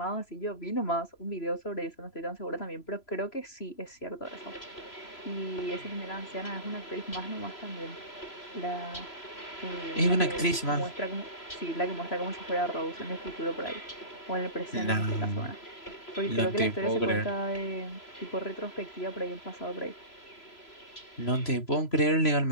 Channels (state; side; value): late; right; 3.0 ms